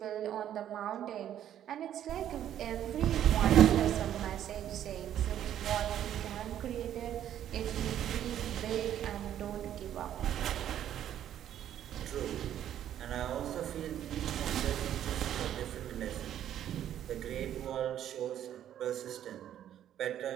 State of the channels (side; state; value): left; quieter; 10.9 dB